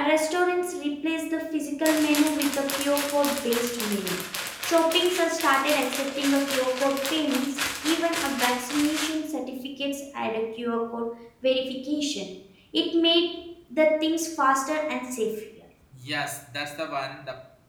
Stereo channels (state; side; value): identical; both; correlation 1.00